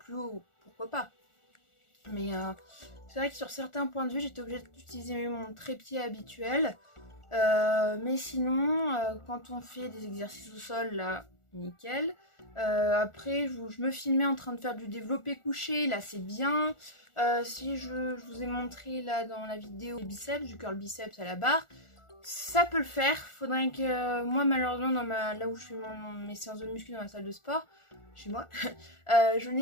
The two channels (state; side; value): late; right; 1.4 ms